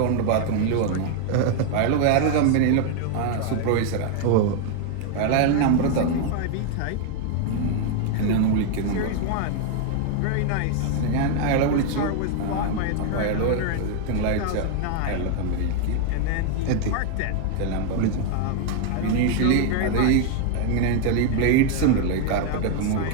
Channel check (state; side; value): different; both; correlation 0.00